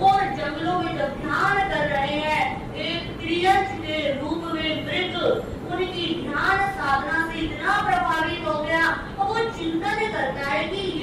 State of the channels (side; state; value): both; identical; correlation 1.00